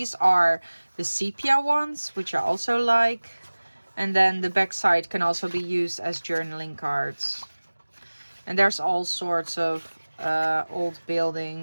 are the sepia ones, which I also like. And then the back side can also be used as journaling cards. And there's all sorts of old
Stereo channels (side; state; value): both; inverted; correlation -1.00